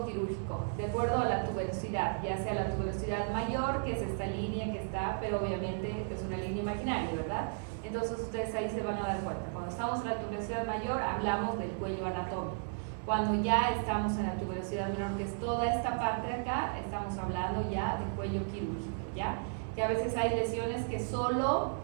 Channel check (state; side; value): silent; left; digital silence